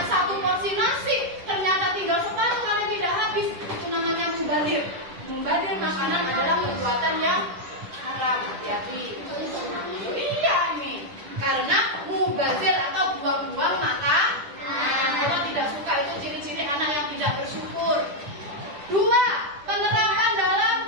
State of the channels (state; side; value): late; left; 10 ms